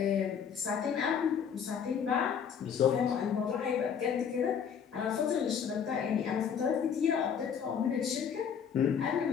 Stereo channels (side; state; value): right; quieter; 7.5 dB